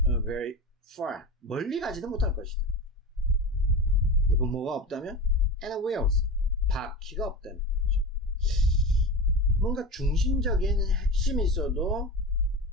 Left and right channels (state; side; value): normal; both; correlation 0.26